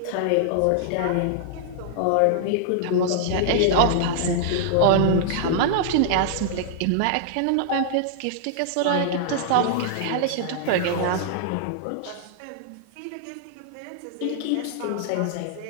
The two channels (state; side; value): different; both; correlation -0.01